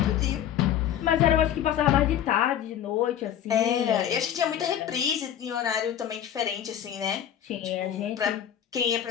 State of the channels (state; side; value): quieter; right; 10.2 dB